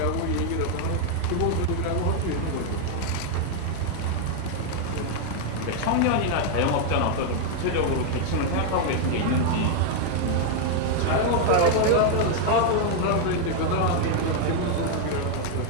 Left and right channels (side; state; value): both; different; correlation 0.00